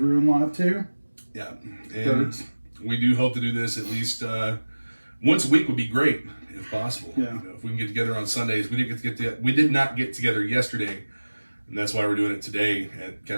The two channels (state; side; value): inverted; both; correlation -1.00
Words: Ruin Live 2. Yeah. And we do hope to do this at least once a week would be great if possible. Yeah. If we can get together on Sundays. We did not get together yesterday, and that's why we're doing it today at